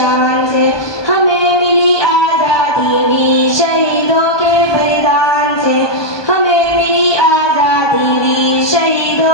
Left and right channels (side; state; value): right; late; 1.2 ms